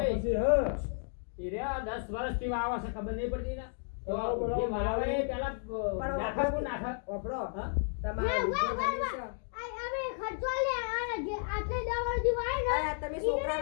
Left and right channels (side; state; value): right; silent; digital silence